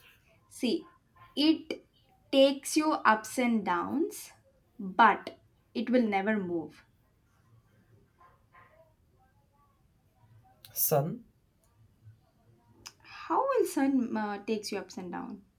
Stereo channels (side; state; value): both; identical; correlation 1.00